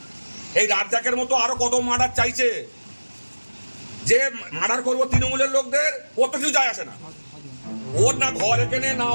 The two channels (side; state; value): both; inverted; correlation -1.00